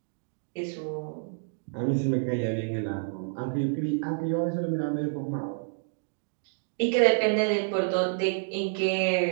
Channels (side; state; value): left; silent; digital silence